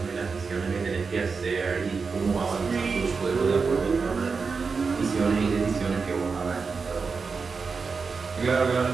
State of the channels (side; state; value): left; quieter; 4.9 dB